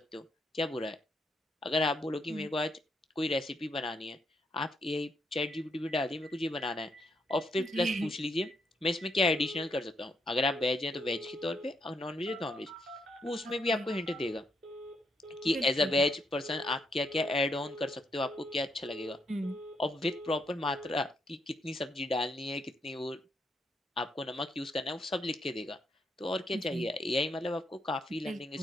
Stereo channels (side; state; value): both; normal; correlation 0.77